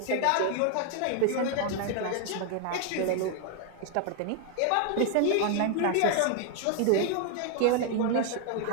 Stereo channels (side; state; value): both; different; correlation 0.00